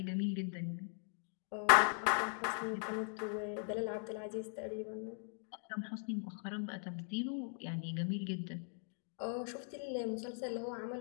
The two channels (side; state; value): right; silent; 51 dB below the other